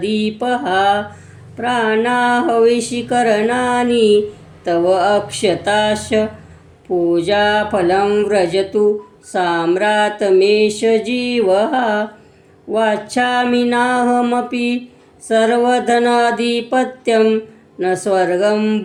प्राणाहविषीकरणानि तव अक्षताश्च, पूजाफलं व्रजतु साम्रातमेष जीवः। वाञ्छामि नाहमपि सर्वधनाधिपत्यं, न स्वर्गं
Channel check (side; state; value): both; identical; correlation 1.00